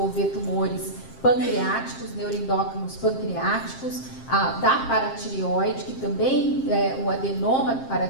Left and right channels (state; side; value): late; right; 7.6 ms